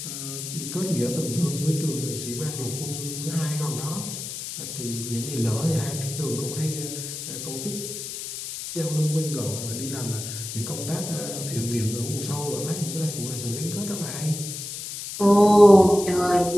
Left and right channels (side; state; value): left; noise; hiss, 7 dB below the sound